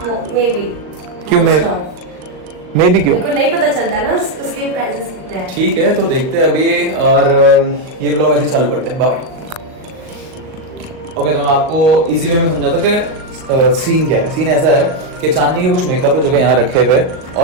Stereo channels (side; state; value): left; late; 38 ms